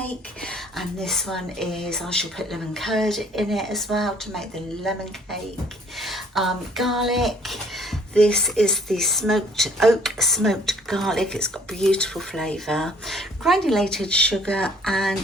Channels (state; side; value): normal; both; correlation 0.58